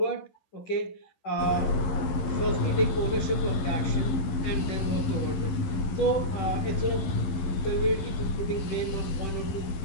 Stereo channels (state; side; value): late; right; 11 ms